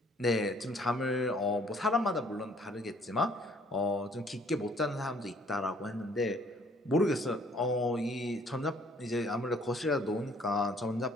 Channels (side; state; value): both; normal; correlation 0.60